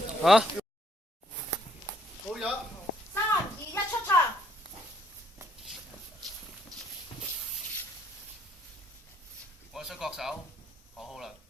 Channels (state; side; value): normal; both; correlation 0.67